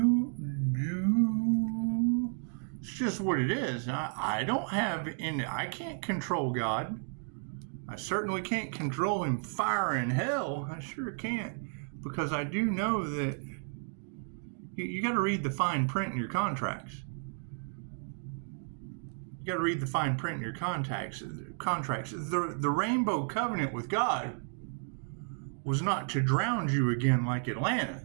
It's just what it is. I don't have any, I can't control God. I certainly can't control him firing hell. I sure can't. Because I do know that you got to read the fine print in your contracts. You got to read the fine print in your contracts. The Rainbow Covenant with God was not to drown you again like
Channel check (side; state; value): left; silent; 56 dB below the other